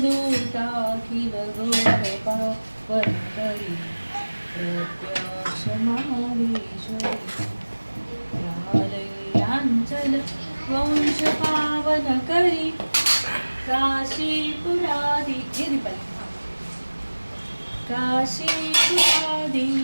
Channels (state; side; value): inverted; both; correlation -1.00